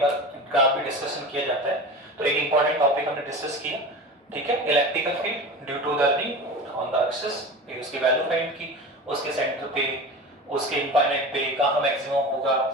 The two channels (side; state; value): both; normal; correlation 0.32